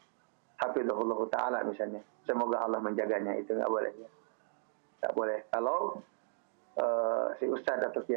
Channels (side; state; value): left; silent; digital silence